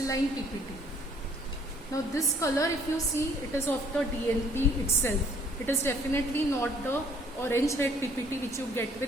PPT. Now this color, if you see, it is of the DNP itself. It is definitely not the orange red PPT which you get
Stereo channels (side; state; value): both; normal; correlation 0.60